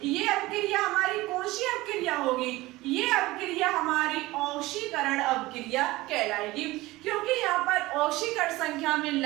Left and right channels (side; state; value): left; quieter; 19.3 dB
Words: ये अपक्रिया हमारी कौन सी अपक्रिया होगी, ये अपक्रिया हमारी ऑक्सीकरण अपक्रिया कहलाएगी, क्योंकि यहाँ पर ऑक्सीकरण संख्या में